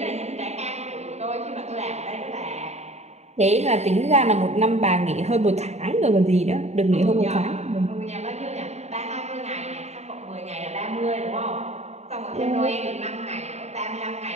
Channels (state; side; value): late; left; 0.32 ms